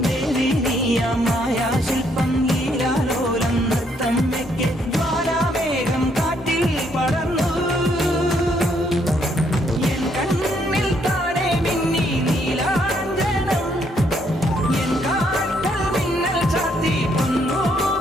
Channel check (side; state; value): both; normal; correlation 0.71